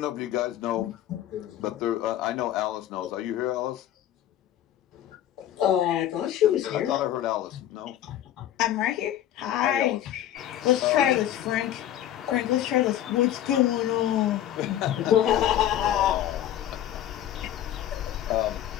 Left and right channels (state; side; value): quieter; right; 11.8 dB